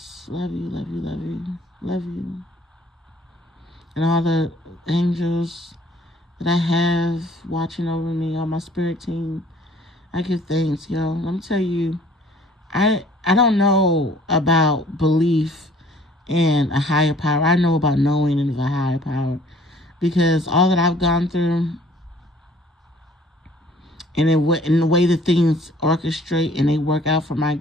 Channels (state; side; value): normal; both; correlation 0.55